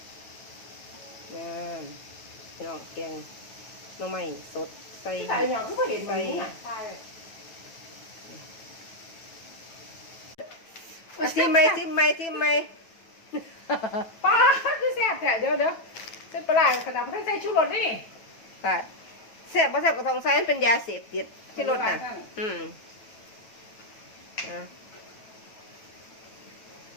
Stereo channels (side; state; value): right; late; 9.2 ms